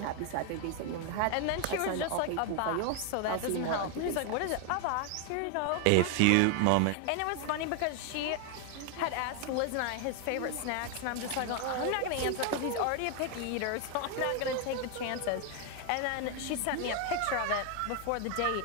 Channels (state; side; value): different; both; correlation 0.00